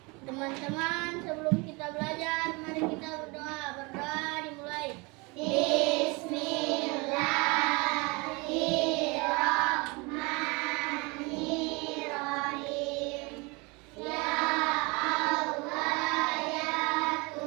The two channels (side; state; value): left; quieter; 27.5 dB